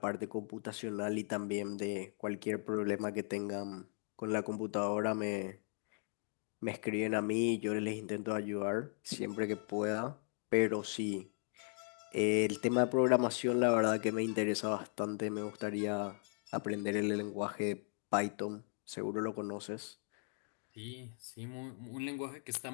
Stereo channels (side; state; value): right; silent; 53 dB below the other